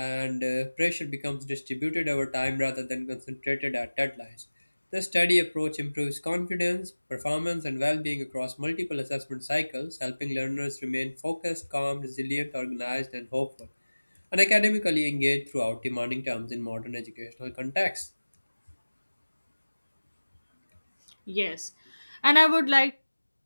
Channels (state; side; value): inverted; both; correlation -1.00